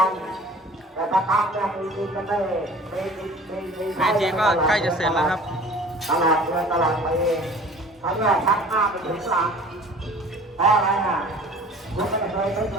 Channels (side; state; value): both; normal; correlation 0.46